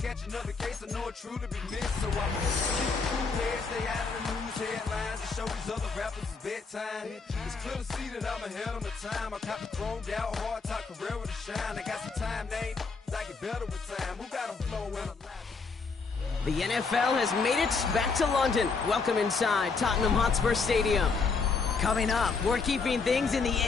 another case, I know it truly be missed. So I'm keep the cool head, stay out of the news headlines, and show these other rappers it's bedtime. It's clear to see that I'm ahead of my time. I cop the chromed out, hard top career with a shine. I got some time, name, I get better with time. Who got a flow when I'm live? The NFL has made it back to London. Welcome inside Tottenham Hotspur Stadium. Coming up, we're keeping things in the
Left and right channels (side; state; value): right; quieter; 4.7 dB